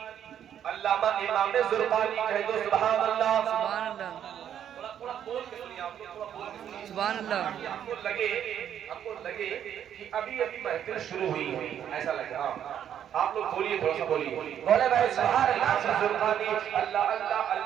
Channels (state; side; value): quieter; left; 9.6 dB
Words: علامہ امام زرقانی کہہ دو سبحان اللہ۔ سبحان اللہ، تھوڑا بول کے سنیے آپ لوگ، تھوڑا بول کے سنیے۔ سبحان اللہ۔ آپ کو لگے کہ ابھی محفل شروع ہوئی ہے، ایسا لگے؟ ہاں آپ لوگ بولیے، تھوڑا سا بولیے، بولے بھائی سبحان اللہ۔ زرقانی اللہ اللہ،